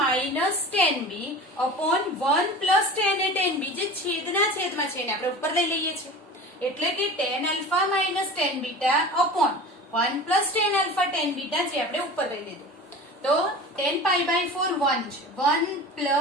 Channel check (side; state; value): both; normal; correlation 0.36